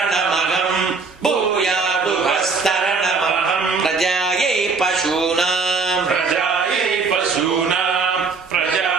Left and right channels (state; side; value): quieter; left; 4.6 dB